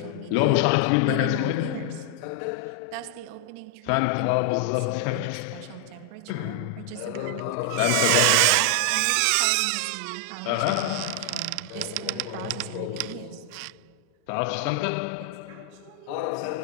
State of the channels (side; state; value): both; different; correlation 0.00